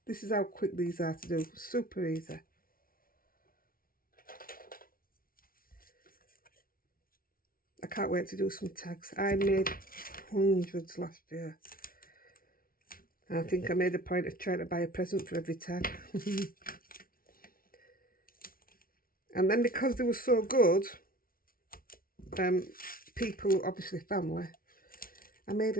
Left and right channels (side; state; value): right; late; 0.42 ms